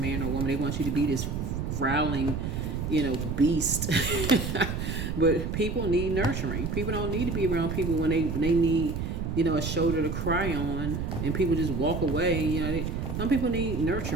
or a woman. They want you to be this growling, beast. But people need nurturing. People don't need to be around people when they need, a shoulder to cry on, and people just walk away. Some people need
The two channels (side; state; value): right; noise; rumble, 3 dB below the sound